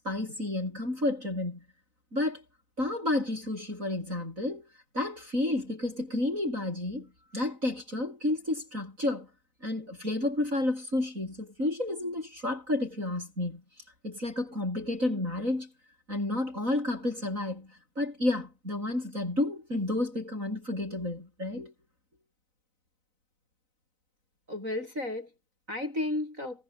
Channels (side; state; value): left; late; 4.0 ms